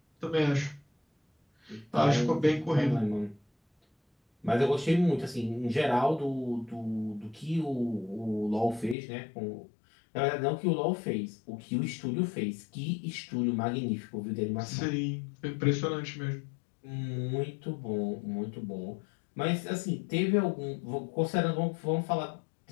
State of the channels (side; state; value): right; drops out; at 9.0 s